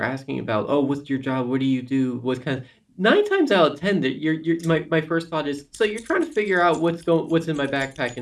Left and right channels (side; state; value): both; identical; correlation 1.00